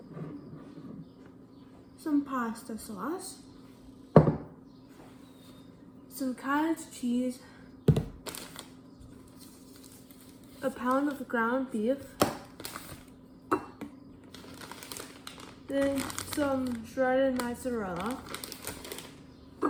some pasta sauce, some cottage cheese, a pound of ground beef, then some shredded mozzarella,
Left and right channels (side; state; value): both; identical; correlation 1.00